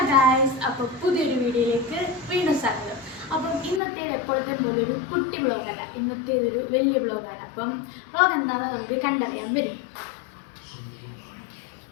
guys, അപ്പോൾ പുതിയൊരു വീഡിയോയിലേക്ക് വീണ്ടും സ്വാഗതം. അപ്പം ഇന്നത്തെ എപ്പോഴത്തെ പോലെ ഒരു കുട്ടി വ്ളോഗല്ല, ഇന്നത്തെ ഇതൊരു വലിയ വ്ളോഗാണ്. അപ്പം വ്ളോഗ് എന്താണെന്ന് നമുക്ക് കണ്ടറിയാൻ വരും.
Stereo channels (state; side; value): drops out; right; at 3.8 s